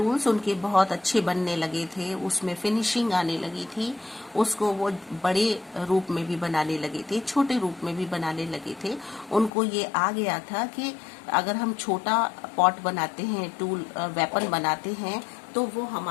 उनके बहुत अच्छे बनने लगे थे, उसमें फिनिशिंग आने लगी थी, उसको वो बड़े रूप में भी बनाने लगे थे, छोटे रूप में भी बनाने लगे थे। उनको ये आ गया था कि अगर हम छोटा पॉट बनाते हैं, टूल वेपन बनाते हैं, तो वो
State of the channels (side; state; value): right; drops out; at 9.5 s